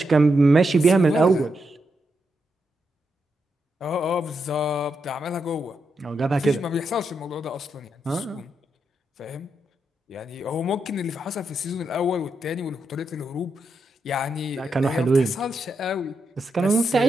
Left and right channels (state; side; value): normal; both; correlation 0.83